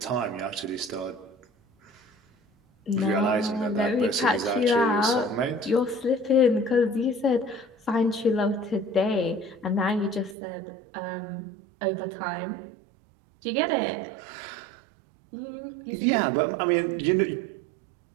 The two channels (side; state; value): left; drops out; at 10.4 s